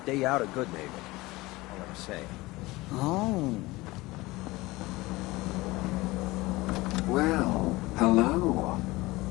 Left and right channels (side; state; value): right; quieter; 20.7 dB